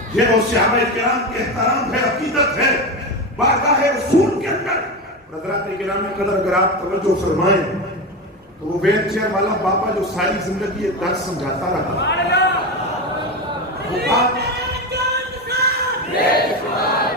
یہ وہ صحابہ کرام کے احترام ہے، عقیدت ہے بارگاہ رسول کے اندر۔ حضرات کرام قدر اگر آپ توجہ فرمائیں تو وہ ویل چیئر والا بابا جو ساری زندگی یہ درس سمجھاتا رہا، وہ بات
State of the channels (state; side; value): normal; both; correlation 0.19